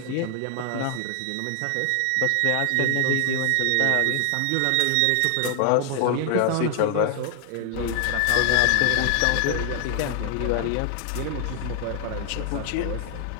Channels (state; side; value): different; both; correlation 0.00